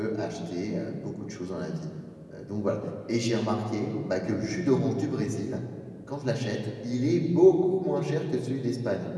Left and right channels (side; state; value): both; identical; correlation 1.00